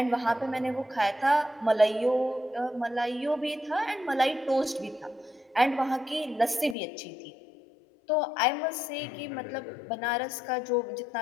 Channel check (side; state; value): right; drops out; at 6.8 s